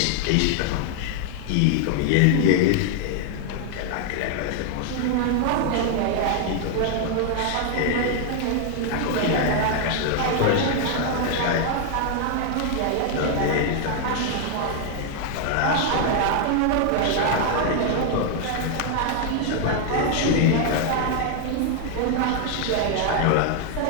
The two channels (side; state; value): both; different; correlation 0.00